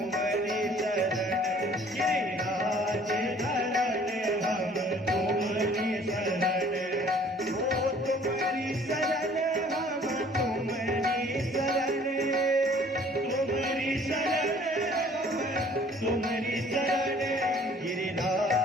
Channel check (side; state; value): both; normal; correlation 0.55